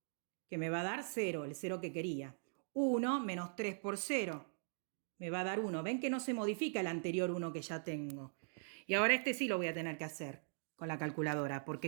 que me va a dar 0, el 0 que quería. 1 menos 3 por 0, me va a dar 1. ¿Ven que no se modifica el anterior 1 que ya tengo? Y ahora este sí lo voy a tener que hacer con la calculadora,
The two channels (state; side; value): silent; left; digital silence